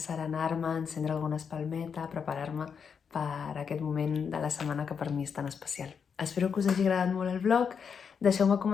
encendre alguna espalmeta, preparar-me per aquest moment de la setmana que per mi és tan especial. Espero que us hagi agradat molt el vlog. Deixeu-me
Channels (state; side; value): quieter; right; 6.6 dB